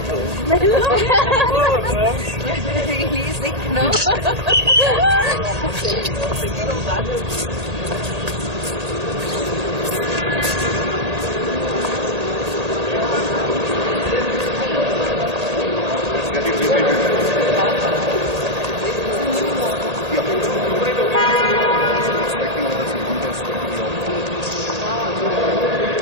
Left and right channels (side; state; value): left; late; 1.8 ms